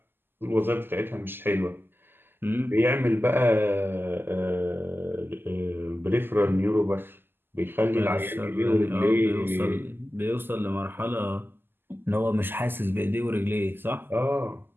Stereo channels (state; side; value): late; left; 0.098 ms